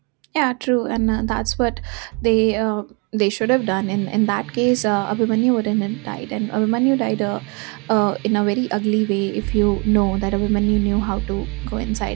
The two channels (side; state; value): left; quieter; 31.0 dB